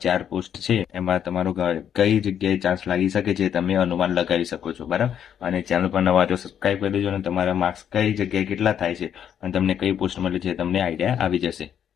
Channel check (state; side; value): quieter; right; 9.0 dB